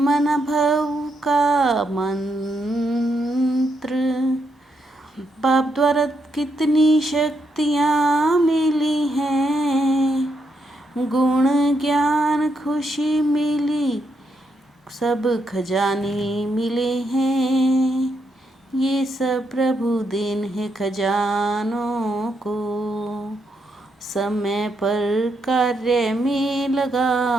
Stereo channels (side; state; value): both; normal; correlation 0.80